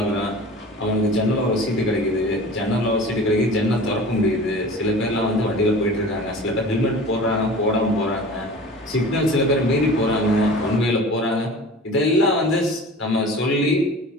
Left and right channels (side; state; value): both; normal; correlation 0.39